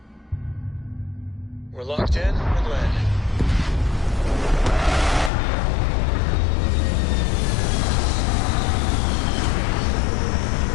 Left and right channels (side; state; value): right; drops out; at 5.3 s